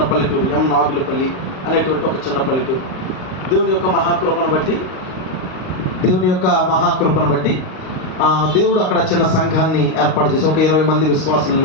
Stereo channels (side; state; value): right; late; 38 ms